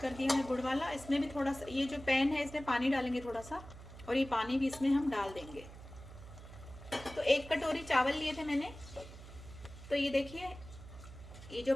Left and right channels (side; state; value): right; noise; hum, 15 dB below the sound